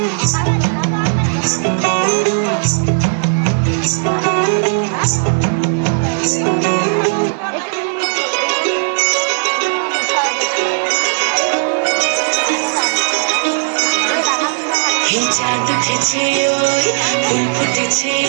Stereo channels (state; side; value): silent; left; digital silence